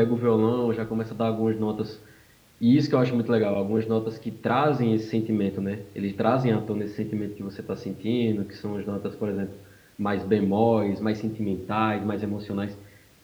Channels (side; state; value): both; identical; correlation 1.00